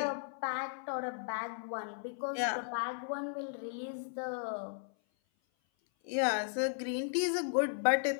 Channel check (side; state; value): right; silent; 54 dB below the other